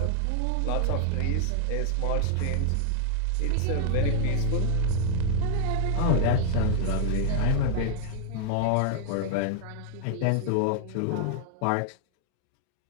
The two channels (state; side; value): different; both; correlation 0.00